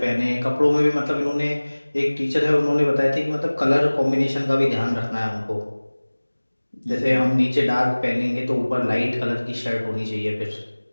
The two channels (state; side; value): inverted; both; correlation -1.00